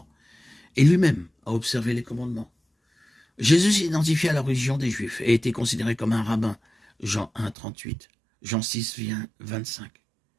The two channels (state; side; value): drops out; left; at 7.6 s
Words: Et lui-même a observé les commandements. Jésus s'identifiait à la religion des Juifs et était considéré comme un rabbin, Jean 1, 38, Jean 6, 25.